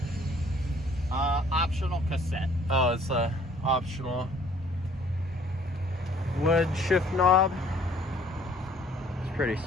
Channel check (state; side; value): normal; both; correlation 0.58